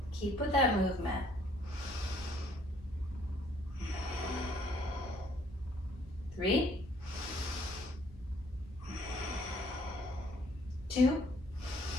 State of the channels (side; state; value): both; normal; correlation 0.62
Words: Keep with that movement. 3, 2,